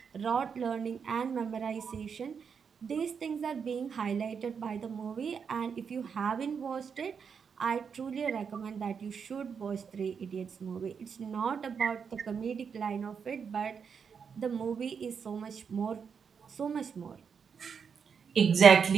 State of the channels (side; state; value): left; quieter; 6.5 dB